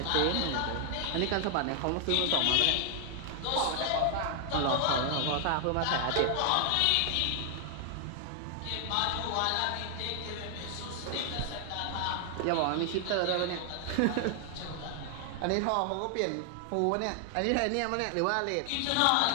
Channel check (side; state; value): both; different; correlation 0.00